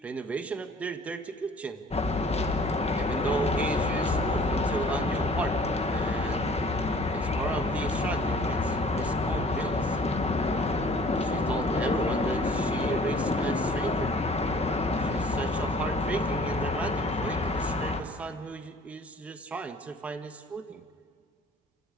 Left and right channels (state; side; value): normal; both; correlation 0.51